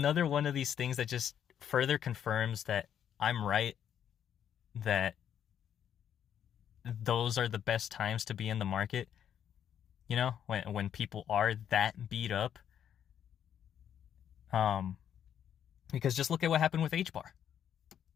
one of these things that just further confirms that I'm right, that those are the best times to be in the market, when people are that beat up. Because just look at what happened with HBAR.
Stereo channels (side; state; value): right; quieter; 9.3 dB